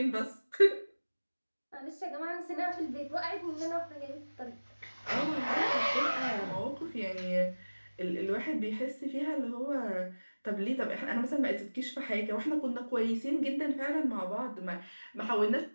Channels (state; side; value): inverted; both; correlation -1.00